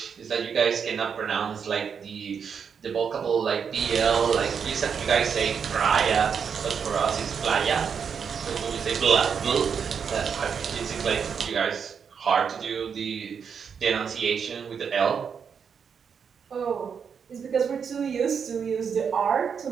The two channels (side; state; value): left; quieter; 6.7 dB